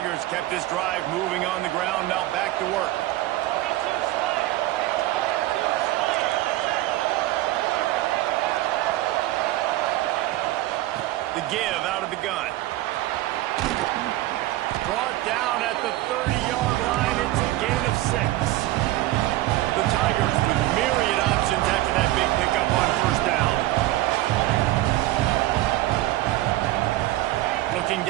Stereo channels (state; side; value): quieter; left; 16.4 dB